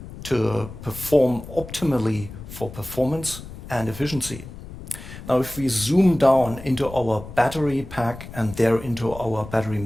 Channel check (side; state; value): left; noise; rumble, 13 dB below the sound